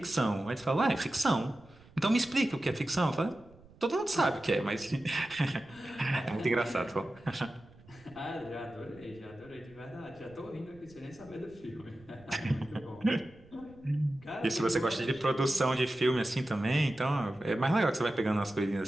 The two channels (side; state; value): right; noise; rumble, 24 dB below the sound